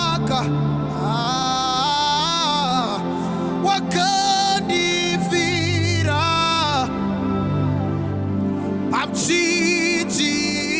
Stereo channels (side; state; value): both; identical; correlation 1.00